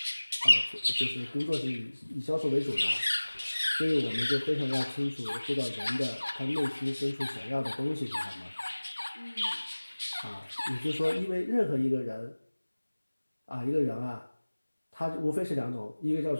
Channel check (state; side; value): inverted; both; correlation -1.00